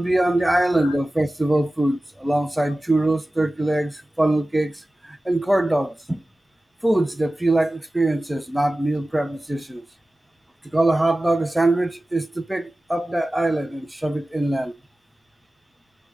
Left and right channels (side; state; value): both; normal; correlation 0.96